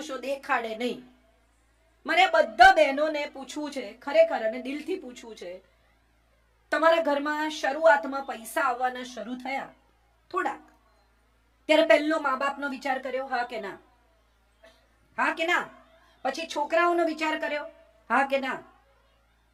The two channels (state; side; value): identical; both; correlation 1.00